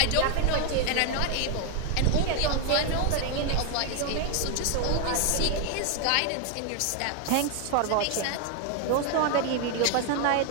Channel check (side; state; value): both; different; correlation 0.01